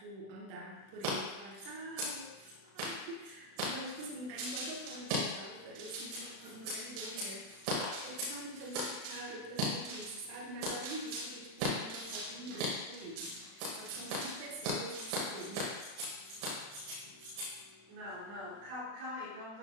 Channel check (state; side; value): late; left; 36 ms